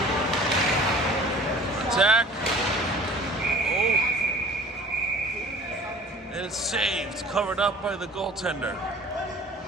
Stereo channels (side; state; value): both; normal; correlation 0.46